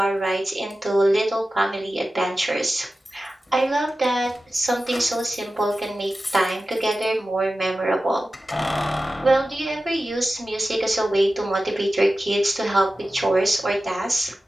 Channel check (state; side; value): normal; both; correlation 0.94